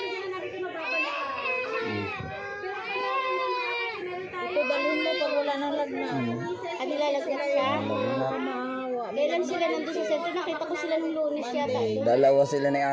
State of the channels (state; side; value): identical; both; correlation 1.00